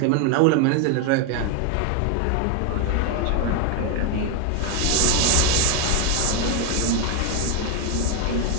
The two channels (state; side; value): different; both; correlation 0.01